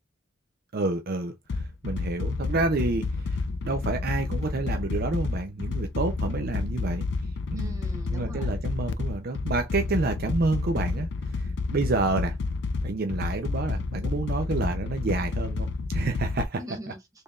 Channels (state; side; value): normal; both; correlation 0.58